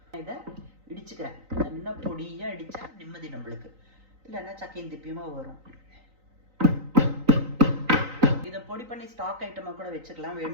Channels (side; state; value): left; late; 3.9 ms